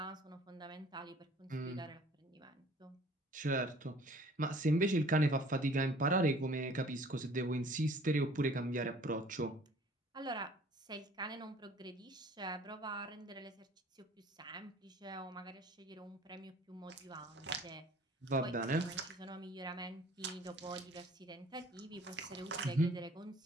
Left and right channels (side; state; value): both; normal; correlation 0.52